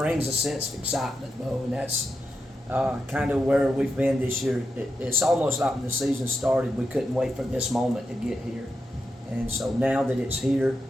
a sense of excitement, Bo, and that's kind of where we've been this year. It's almost like when the season started, we couldn't wait for this moment to get here. And so now that it's here,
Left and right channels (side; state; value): both; normal; correlation 0.87